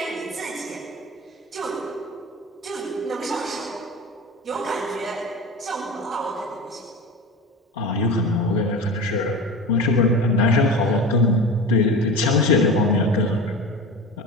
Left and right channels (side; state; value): both; normal; correlation 0.30